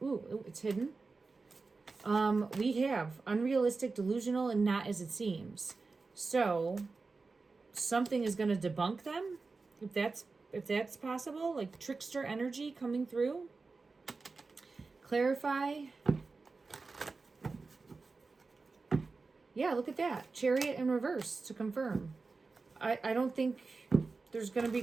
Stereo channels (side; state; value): left; quieter; 4.1 dB